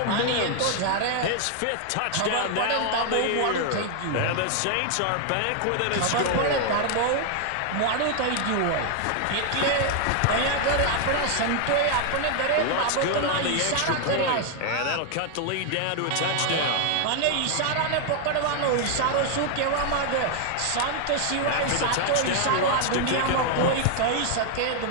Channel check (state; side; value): different; both; correlation 0.00